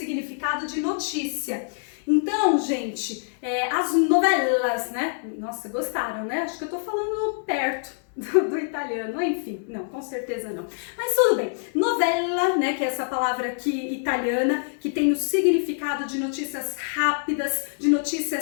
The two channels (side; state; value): right; silent; 62 dB below the other